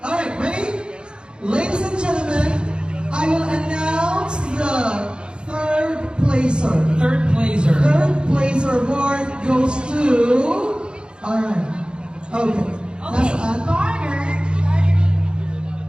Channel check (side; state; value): left; late; 0.052 ms